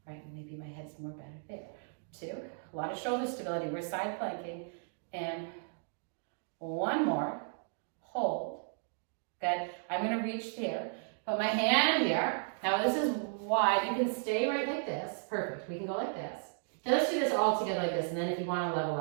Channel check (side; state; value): left; silent; digital silence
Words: Right, maybe my head's more better there. 2. A lot of shoulder stability. We're side planking. And 1 more. Hold. Good. I'm going to reach there. Put my hand here. Now this is wide. You can stay right like this. Perfect. We can go like this. Now let's do this all together like this. And then if you want to level